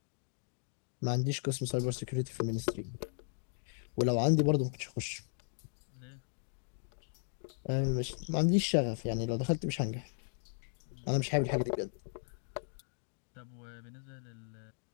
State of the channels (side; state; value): right; silent; digital silence